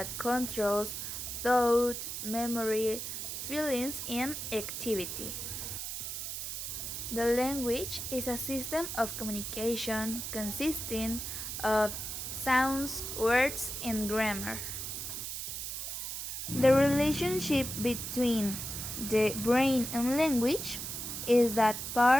controls thought, memory, feelings, and activity. The language is a system of communication consisting of sounds, words, and grammar. The relationship between the brain and language is that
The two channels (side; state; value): right; noise; hiss, 5 dB below the sound